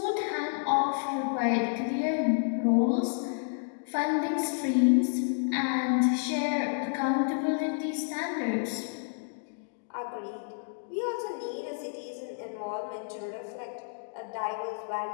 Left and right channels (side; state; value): right; silent; digital silence